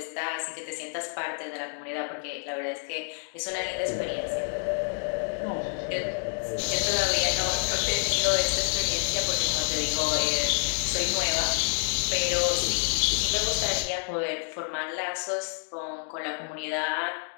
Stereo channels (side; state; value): right; silent; 59 dB below the other